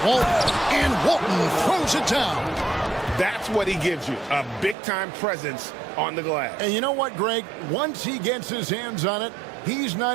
Walton, and Walton throws it down. That's what he gives you, a big-time presence on the glass. And you know what, Greg? Once he gets his hands on it, he's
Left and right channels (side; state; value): left; drops out; at 4.8 s